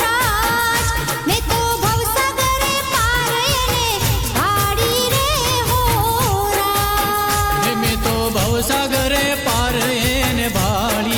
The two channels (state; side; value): identical; both; correlation 1.00